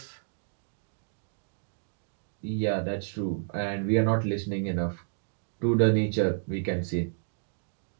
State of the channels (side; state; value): left; silent; digital silence